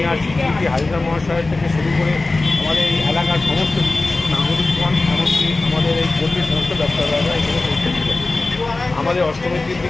সিটি হাজরা মহাশয় থেকে শুরু করে আমাদের এই এলাকার সমস্ত নাগরিকগণ, এমনকি আমাদের এই পল্লীর সমস্ত ব্যবসাদাররা এখানে পৌঁছেছিলেন। আমাদের অষ্টমীর দিন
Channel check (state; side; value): quieter; right; 3.3 dB